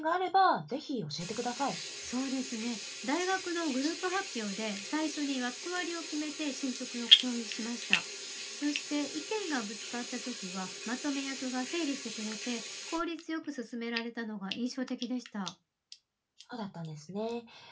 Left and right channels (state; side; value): identical; both; correlation 1.00